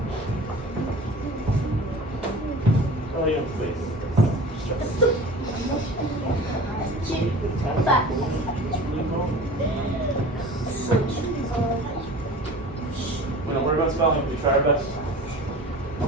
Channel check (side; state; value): both; normal; correlation 0.39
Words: Oh, yeah, please. We don't worry about spelling, we try our best.